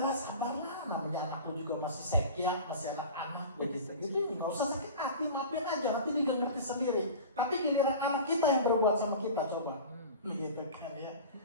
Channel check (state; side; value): inverted; both; correlation -0.35